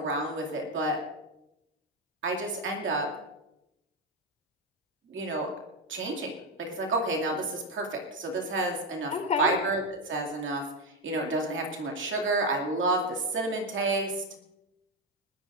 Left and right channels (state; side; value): normal; both; correlation 0.08